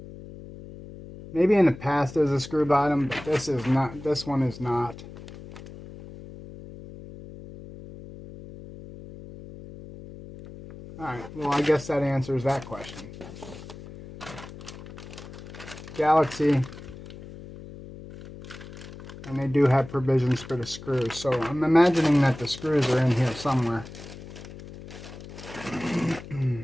Maybe in the past there's a screw bottom, but this is not. This one is not. Alright, well I guess that answers that question. Galaxy, and they do have provisions for the screws, so I'm imagining that the screws are in here somewhere.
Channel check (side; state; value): left; noise; hum, 15 dB below the sound